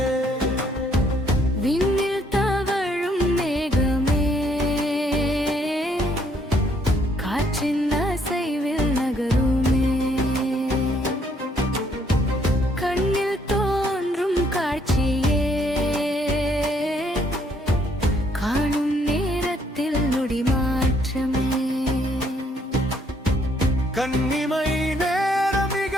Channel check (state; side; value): normal; both; correlation 0.68